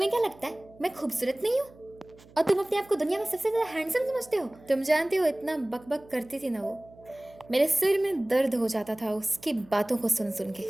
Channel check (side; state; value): right; noise; hum, 24 dB below the sound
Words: क्या लगता है मैं खूबसूरत नहीं हूँ? और तुम अपने आप को दुनिया में सबसे ज़्यादा हैंडसम समझते हो? तुम जानते हो इतना बकबक करती थी ना वो, मेरे सिर में दर्द हो जाता था उसकी बातों को सुन सुन के।